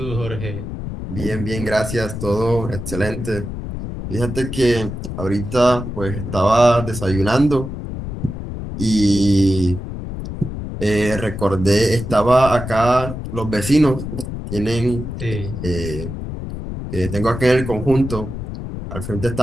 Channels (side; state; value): left; noise; rumble, 7 dB below the sound